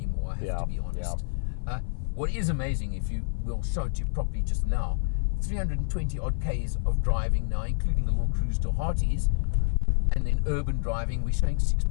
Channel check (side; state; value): right; silent; 56 dB below the other